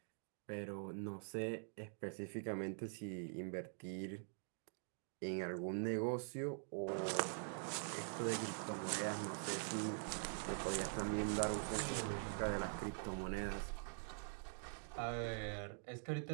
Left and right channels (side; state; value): left; silent; digital silence